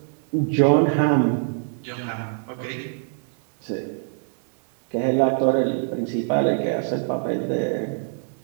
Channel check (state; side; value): silent; left; digital silence